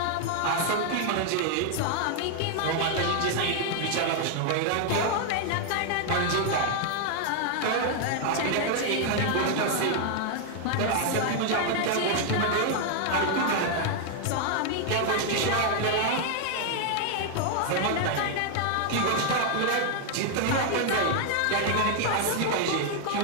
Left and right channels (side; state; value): both; different; correlation 0.00